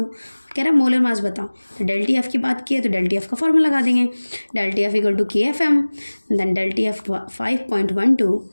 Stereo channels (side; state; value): both; inverted; correlation -1.00